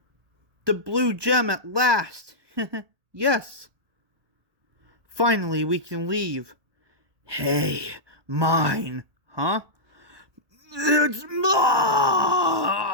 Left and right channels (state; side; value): late; left; 1.1 ms